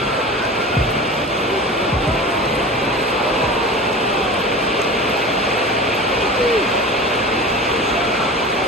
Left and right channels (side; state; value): both; normal; correlation 0.34